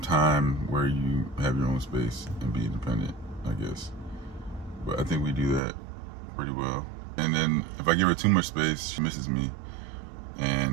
time where you have your own space and be independent, I guess. But I think we do that pretty well. And then if I give her too much space, she misses me.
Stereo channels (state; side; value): drops out; left; at 5.6 s